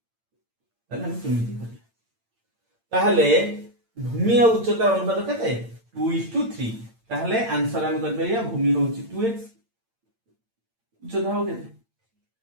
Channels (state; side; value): late; left; 8.8 ms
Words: ताहले हम केमिति करिया? ताहले भूमि और उच्चतार अनुपात केते 2:3, ताहले आंसर हम कर परिया भूमि होची 2x, उच्चता हो केते